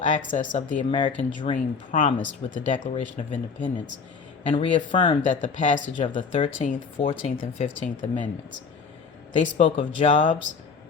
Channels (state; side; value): quieter; right; 5.3 dB